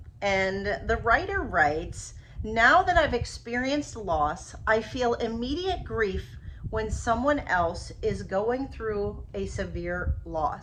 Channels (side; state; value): both; identical; correlation 1.00